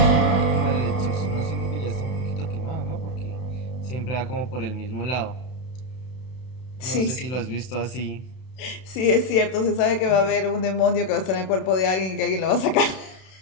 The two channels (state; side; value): late; right; 32 ms